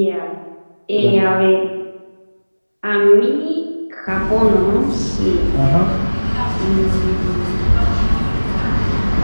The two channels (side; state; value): both; inverted; correlation -1.00